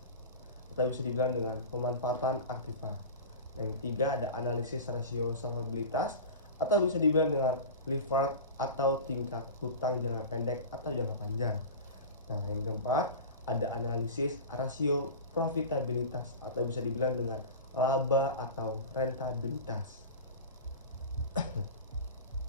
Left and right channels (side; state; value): both; inverted; correlation -0.30